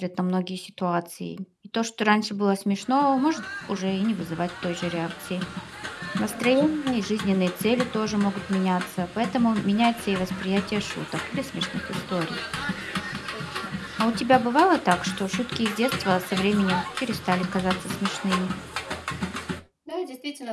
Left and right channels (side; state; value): both; identical; correlation 1.00